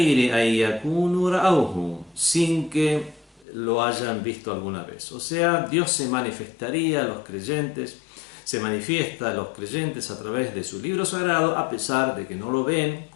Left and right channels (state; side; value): drops out; right; at 3.5 s